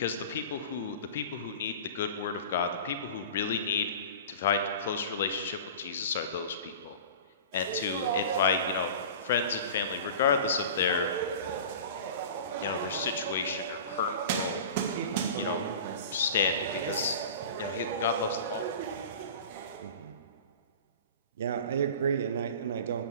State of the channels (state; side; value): inverted; both; correlation -0.37